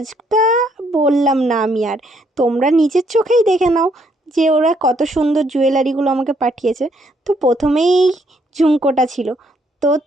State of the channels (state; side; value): normal; both; correlation 0.70